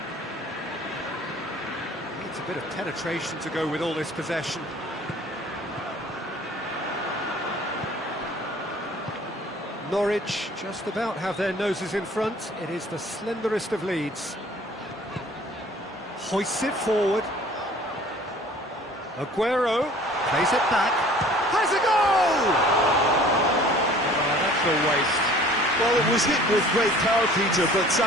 Needs a bit of penetration to go with all this possession. Norwich just about have their noses in front. It is the slenderest of leads. Hoists it forward. Aguero plays it back. Has a goal! Oh, that's a waste. Well, it was hit with great power, Peter, but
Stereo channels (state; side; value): normal; both; correlation 0.50